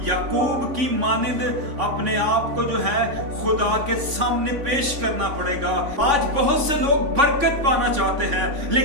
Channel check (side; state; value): left; late; 3.5 ms